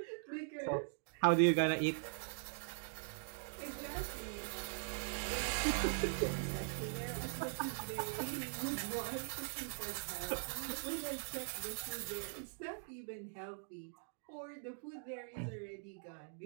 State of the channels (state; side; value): silent; left; digital silence